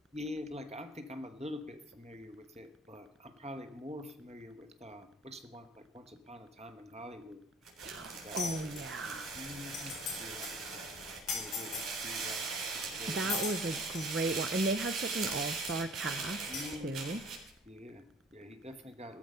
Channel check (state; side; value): normal; both; correlation 0.49